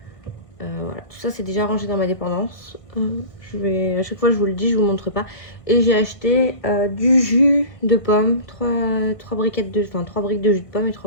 Voilà, tout ça c'est déjà rangé dans ma dépendance. À chaque fois je vous le dis, je vous montre pas. Et j'ai acheté du jus de pomme, 3 briques de jus de pomme et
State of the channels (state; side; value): late; right; 1.5 ms